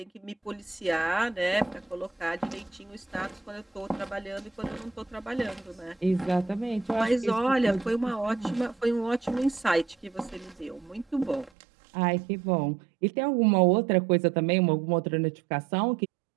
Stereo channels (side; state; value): left; drops out; at 11.5 s